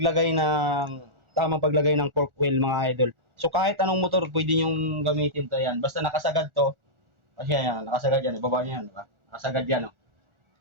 tamang paglagay ng pork oil mga idol. So kahit anong motor pwede niyong gamitin to yan. Basta nakasagad to. Kasi yan, nakasagad yan. Ibaba niyo yan, diba? Nakasagad yan, no?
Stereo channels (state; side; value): late; left; 1.4 ms